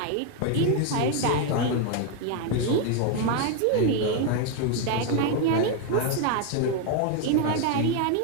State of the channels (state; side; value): different; both; correlation 0.01